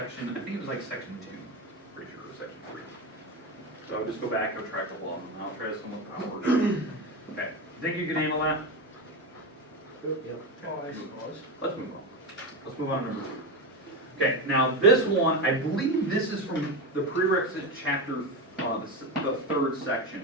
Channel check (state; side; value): normal; both; correlation 0.17